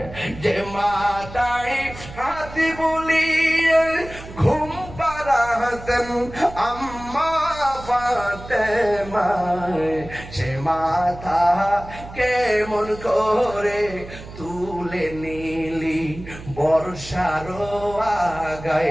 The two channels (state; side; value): noise; right; hum, 14 dB below the sound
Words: যে মাথায় হাত বুলিয়ে ঘুম পাড়াতেন আম্মা ফাতেমায় সে মাথা কেমন করে তুলে নিলি বর্ষার